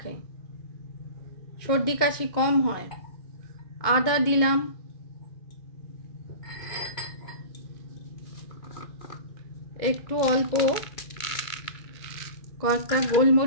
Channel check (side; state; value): right; late; 2.2 ms